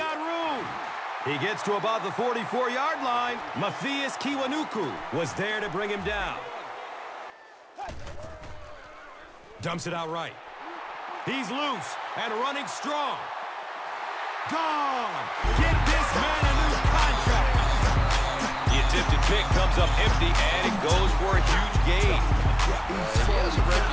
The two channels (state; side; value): identical; both; correlation 1.00